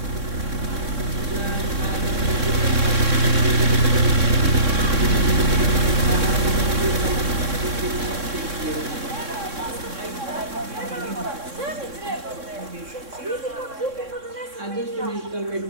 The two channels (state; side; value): late; left; 3.6 ms